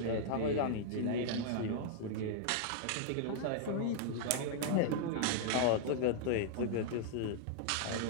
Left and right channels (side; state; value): both; different; correlation -0.01